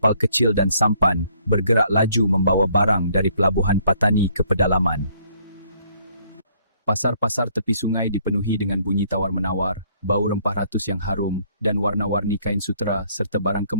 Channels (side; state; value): both; inverted; correlation -0.64